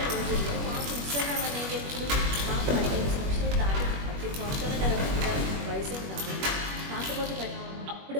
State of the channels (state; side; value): late; left; 21 ms